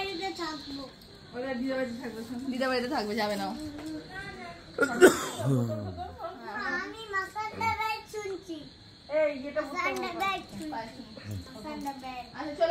ওরা দিদা বাড়িতে থাকবে। দিদা বাড়িতে থাকবে, যাবে না। আমি মাসান্ডা ব্যাগ শুনছি। এই এটা আচ্ছা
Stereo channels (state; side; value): identical; both; correlation 1.00